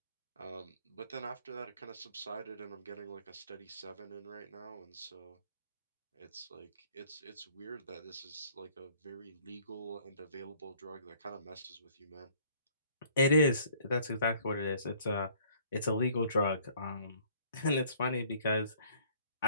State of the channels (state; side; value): inverted; both; correlation -0.58